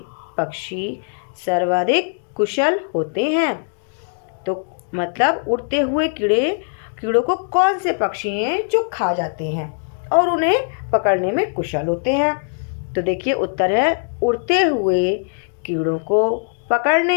पक्षी सर्वाधिक कुशल होते हैं? तो मतलब उड़ते हुए कीड़ों को कौन से पक्षी हैं जो खा जाते हैं और उन्हें पकड़ने में कुशल होते हैं? तो देखिए, उत्तर है, उड़ते हुए कीड़ों को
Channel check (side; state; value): right; silent; digital silence